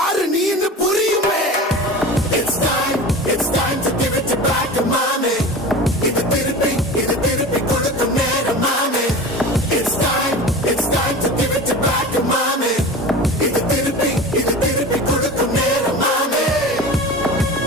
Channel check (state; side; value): normal; both; correlation 0.33